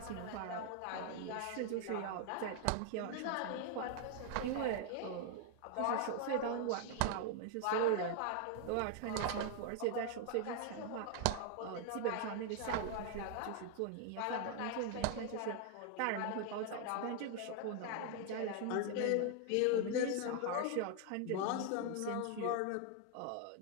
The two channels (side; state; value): both; different; correlation 0.00